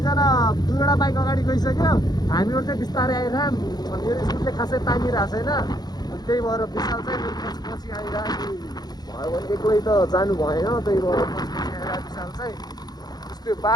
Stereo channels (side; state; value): right; late; 0.19 ms